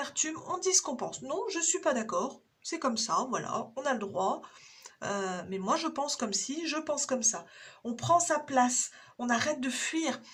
on dit ce qu'on pense. Non, je suis pas d'accord, c'est comme ça, voilà, on a le droit. Mais moi, je pense comme si, je pense comme ça. On prend sa place, on arrête de fuir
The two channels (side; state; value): both; identical; correlation 1.00